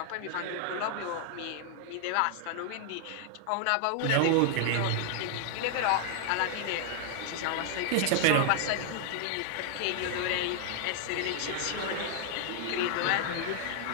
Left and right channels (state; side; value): different; both; correlation 0.00